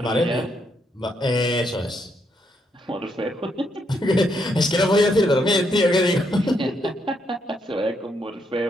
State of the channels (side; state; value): both; normal; correlation 0.77